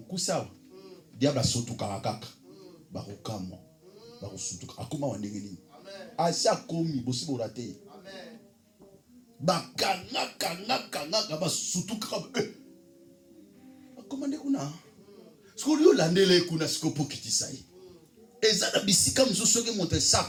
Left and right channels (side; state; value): both; identical; correlation 1.00